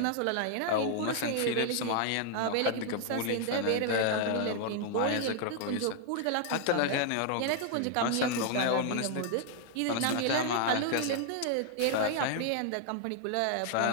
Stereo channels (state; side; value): different; both; correlation 0.00